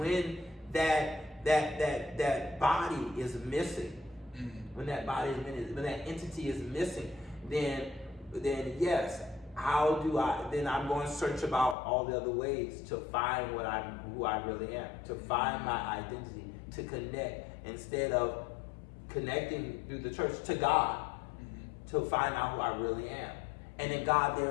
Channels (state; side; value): drops out; right; at 11.8 s